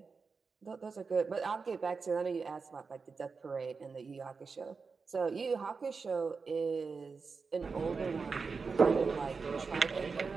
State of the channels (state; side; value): quieter; left; 4.8 dB